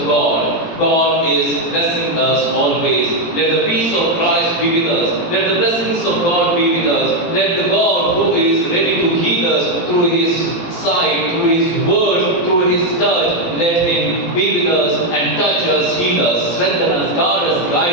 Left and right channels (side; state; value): right; late; 18 ms